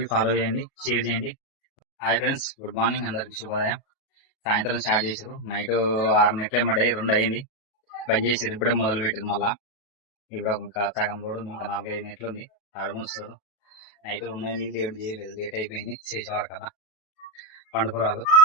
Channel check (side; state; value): right; late; 37 ms